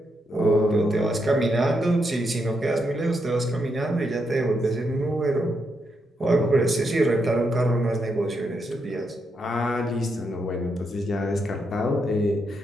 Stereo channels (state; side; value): normal; both; correlation 0.81